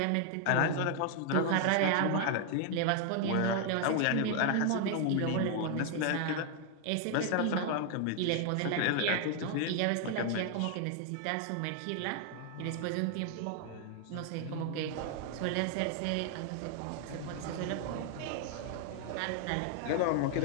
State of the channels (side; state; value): both; different; correlation 0.00